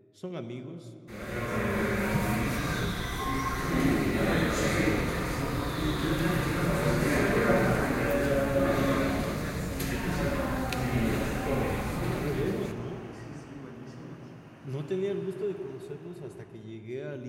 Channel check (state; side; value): identical; both; correlation 1.00